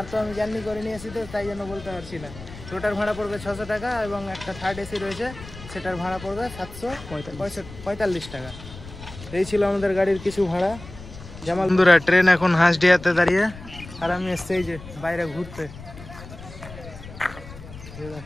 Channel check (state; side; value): noise; left; rumble, 15 dB below the sound